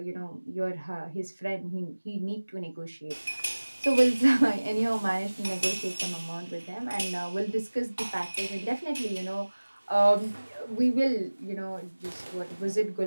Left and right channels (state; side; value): inverted; both; correlation -1.00